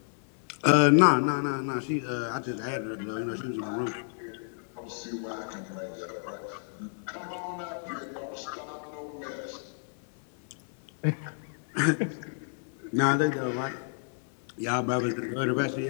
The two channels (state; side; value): silent; right; digital silence